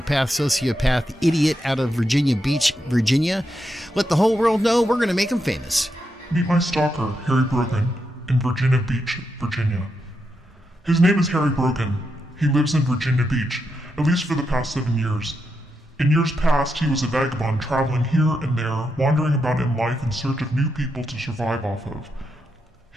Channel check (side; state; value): both; normal; correlation 0.84